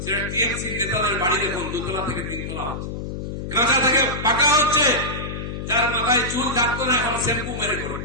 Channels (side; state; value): left; noise; hum, 6 dB below the sound